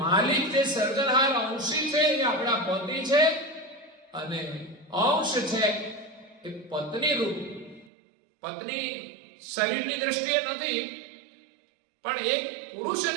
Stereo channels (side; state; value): left; drops out; at 7.9 s